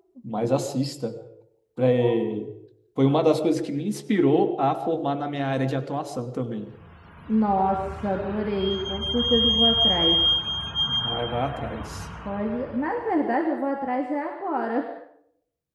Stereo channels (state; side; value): identical; both; correlation 1.00